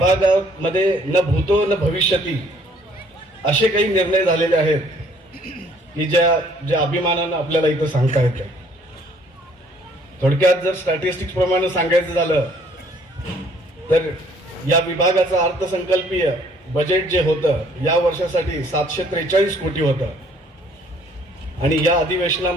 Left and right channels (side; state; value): both; normal; correlation 0.61